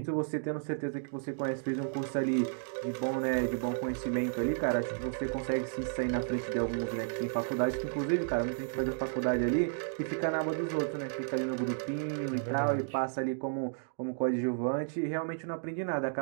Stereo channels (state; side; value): silent; left; digital silence